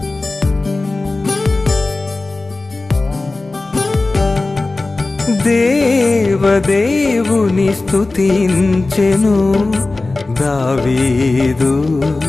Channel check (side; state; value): right; quieter; 3.2 dB